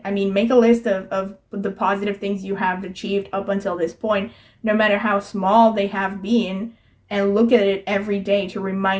make a list of the positive things you have achieved up until this point, no matter how small they have been, and look at it every day to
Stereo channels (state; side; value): identical; both; correlation 1.00